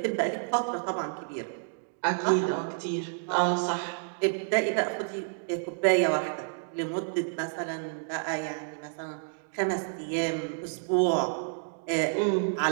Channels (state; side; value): silent; left; digital silence